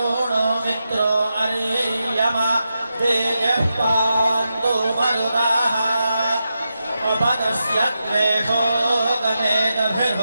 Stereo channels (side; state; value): both; inverted; correlation -0.87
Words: मित्रो अर्यमा तेजः पान्तु मरुताः उपदस्य द्वेषो